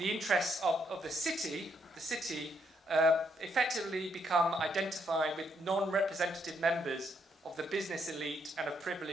interests of the city effectively become identified with non-representative members of the business elite and of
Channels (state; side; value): normal; both; correlation 0.74